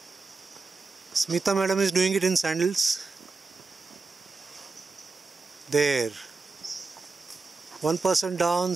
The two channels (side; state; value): left; quieter; 4.1 dB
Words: Smita madam is doing it in sandals. There. One person down,